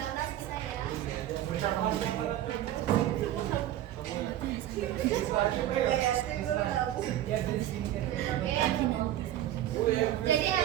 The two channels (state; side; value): quieter; left; 12.8 dB